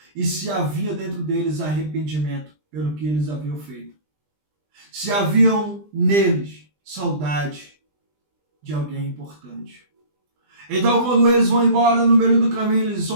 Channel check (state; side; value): late; left; 20 ms